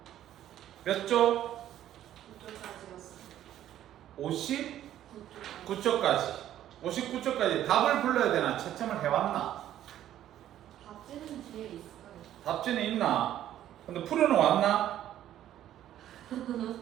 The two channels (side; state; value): left; quieter; 12.0 dB